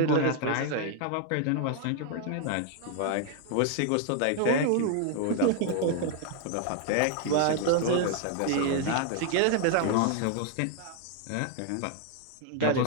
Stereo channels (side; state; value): both; different; correlation 0.00